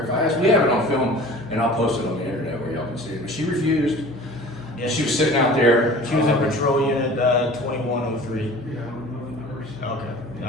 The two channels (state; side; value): normal; both; correlation 0.42